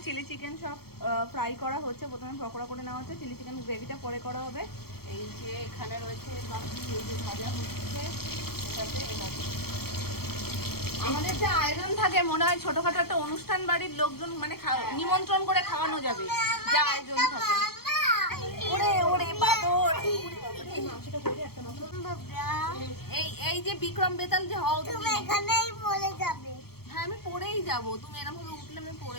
চিলি চিকেন সব ফ্রাই করা হচ্ছে, প্রথমে পকোড়া করে নেওয়া হচ্ছে, চিলি চিকেন গ্রেভিটা পরে করা হবে। এই যে এখানে রয়েছে বাকি এই যে ভাজা হচ্ছে, এটাতে আমাদের যে আয়োজন থাকে মনে হয় ছোটখাটো একটা অনুষ্ঠান বাড়ির লোকজন মানে নিমন্ত্রণ করে খাওয়ানো যাবে, যা আয়োজন থাকে। ওরে ওরে বাদর, এই যে বিক্রম বেতাল যে হও তুমি তুমি, এখানেই বলে যাবে। হ্যাঁ আমি পড়েই যাব। তুমি এরকম ভাবে উঠলে আমি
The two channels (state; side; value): late; right; 0.95 ms